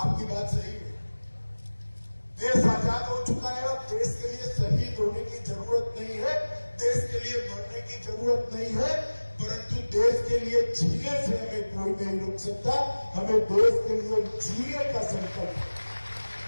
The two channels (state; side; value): inverted; both; correlation -1.00